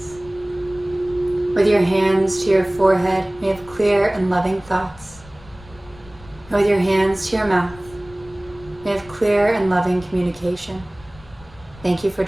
With your hands to your forehead, may have clear and loving thoughts. And with your hands to your mouth, may have clear and loving communication. Thank you for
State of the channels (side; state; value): left; noise; rumble, 22 dB below the sound